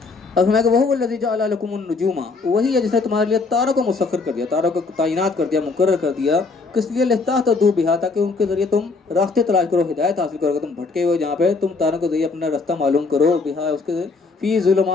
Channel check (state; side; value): quieter; right; 4.1 dB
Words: اب فرمائے گا وہو الذی جعل لکم النجوم، وہی ہے جس نے تمہارے لیے تاروں کو مسخر کر دیا، تاروں کو تعینات کر دیا، مقرر کر دیا. کس لیے؟ لتہتدوا بہا، تاکہ ان کے ذریعے تم راستے تلاش کرو، ہدایت حاصل کرو. تم بھٹکے ہوئے جہاں پہ تم تاروں کے ذریعے اپنا راستہ معلوم کرو. بہا اس کے فی